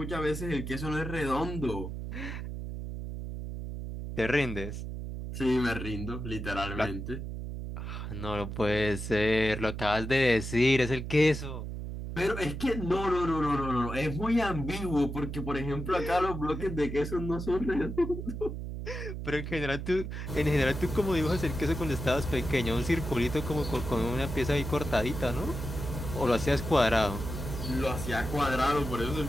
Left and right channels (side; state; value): right; noise; hum, 6 dB below the sound